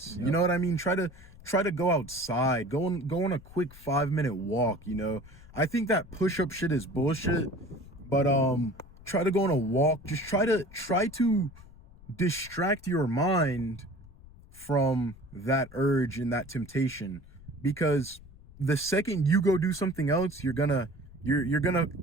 Yep. You know what I mean? Try to go outside, go on a quick 5-minute walk, you know. I think that push-up shit is bullshit, but try to go on a walk. Just try to distract your mind from that urge and that temptation, because the second you go do something else, you're gonna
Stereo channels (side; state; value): left; noise; rumble, 21 dB below the sound